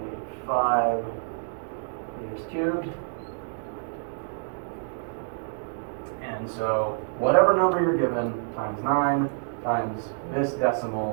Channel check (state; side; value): silent; left; digital silence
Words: meters cubed. And so whatever number you're given times 9 times this